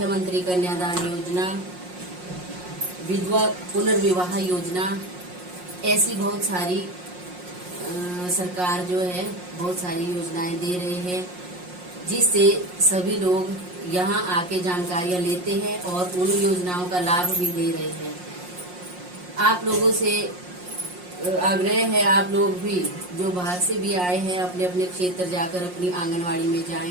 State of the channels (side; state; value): left; late; 5.6 ms